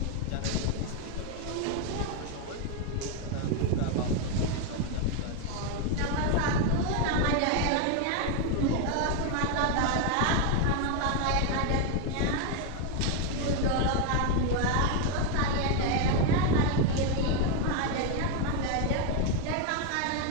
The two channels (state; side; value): different; both; correlation 0.01